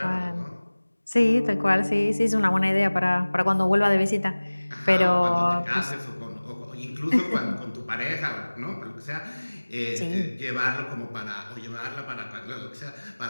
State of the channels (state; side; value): inverted; both; correlation -1.00